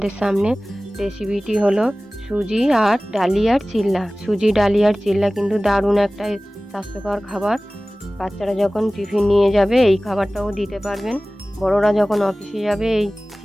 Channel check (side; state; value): both; normal; correlation 0.98